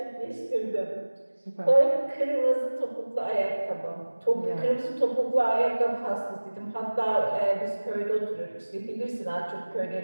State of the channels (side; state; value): both; inverted; correlation -1.00